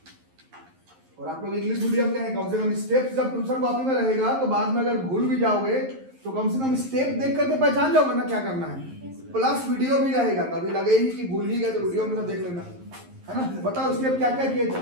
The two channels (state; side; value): late; left; 11 ms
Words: और आप लोग इंग्लिश मीडियम के हैं, कम से कम स्टेप जब ट्यूशन कॉपी में रहेगा तो बाद में अगर भूल भी जाओगे तो कम से कम स्टेप देख करके पहचान जाओगे ना क्या करना है। प्लस वीडियो भी रहेगा, कभी लगे ही कि भूल ही गए तो वीडियो में तो देख लेना, है ना। बताओ स्टेप क्या क्या किए थे।